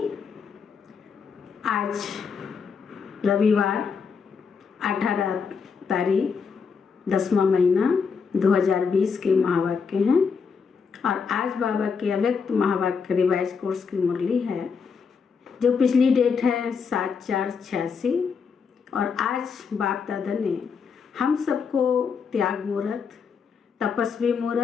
आज रविवार 18 तारीख 10वां महीना 2020 के महावाक्य हैं और आज बाबा के अव्यक्त महावाक्य रिवाइज कोर्स की मुरली है जो पिछली डेट है 7/4/86 और आज बाप दादा ने हम सबको त्याग मुहूर्त, तपस्वी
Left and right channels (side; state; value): right; quieter; 5.8 dB